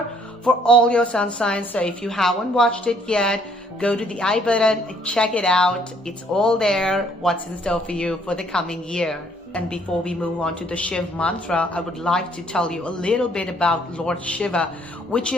for all your sun signs. So if you haven't watched it yet, go to the I button and check it out. It's all there, what's in store for you for the coming year. And before we move on to the Shiv Mantra, I would like to tell you a little bit about Lord Shiva, which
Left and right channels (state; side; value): normal; both; correlation 0.64